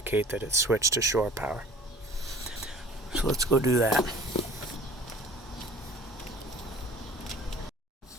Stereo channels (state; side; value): normal; both; correlation 0.46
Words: that it's switched to shore power. So let's go do that.